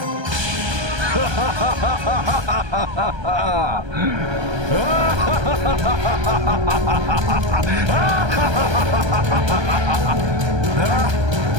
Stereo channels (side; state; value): left; late; 1.3 ms